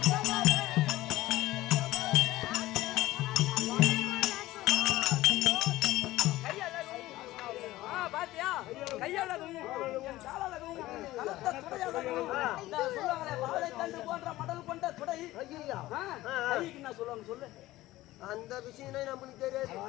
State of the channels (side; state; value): right; quieter; 16.9 dB